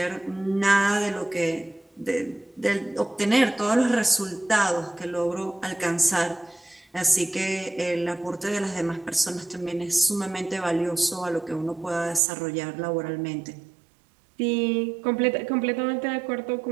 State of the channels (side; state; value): left; drops out; at 12.2 s